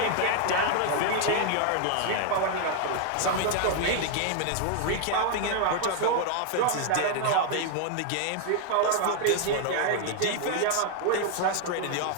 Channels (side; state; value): both; different; correlation 0.00